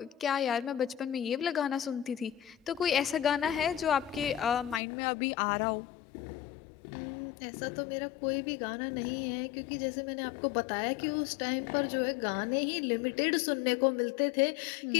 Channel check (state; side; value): drops out; right; at 4.8 s